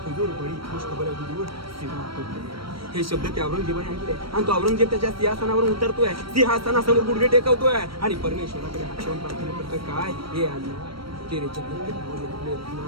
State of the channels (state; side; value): late; left; 0.75 ms